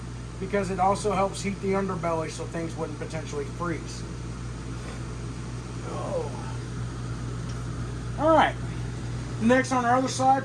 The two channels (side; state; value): both; identical; correlation 1.00